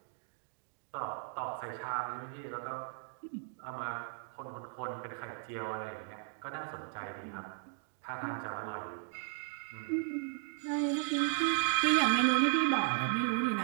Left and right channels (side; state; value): left; silent; 54 dB below the other